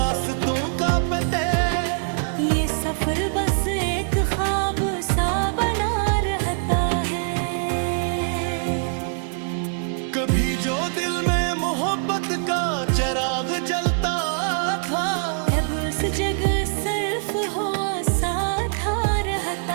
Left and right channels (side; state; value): left; silent; digital silence